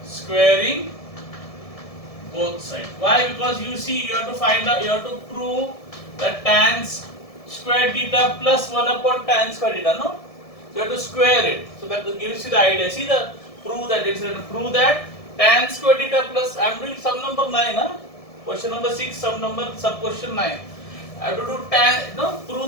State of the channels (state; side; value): late; right; 1.7 ms